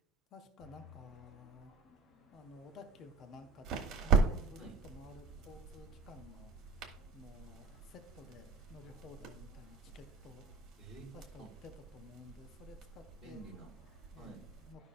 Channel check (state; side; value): quieter; left; 4.4 dB